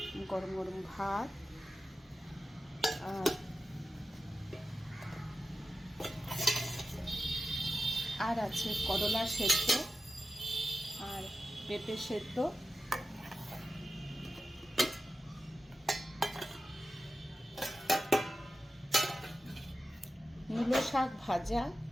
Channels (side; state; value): both; normal; correlation 0.93